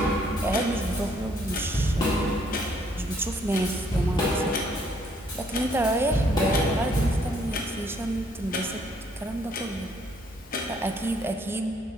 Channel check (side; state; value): both; normal; correlation 0.67